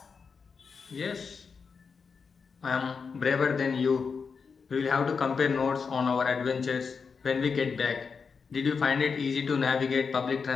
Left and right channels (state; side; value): quieter; right; 5.5 dB